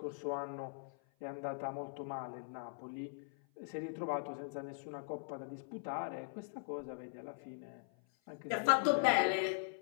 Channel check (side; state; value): right; silent; 51 dB below the other